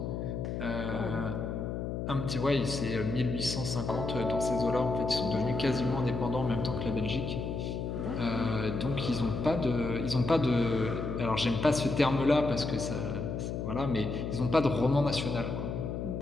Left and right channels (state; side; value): noise; left; hum, 4 dB below the sound